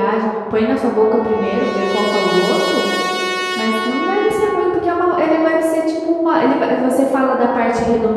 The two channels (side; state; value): both; identical; correlation 1.00